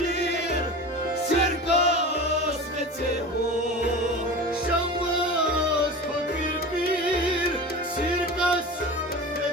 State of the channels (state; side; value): normal; both; correlation 0.32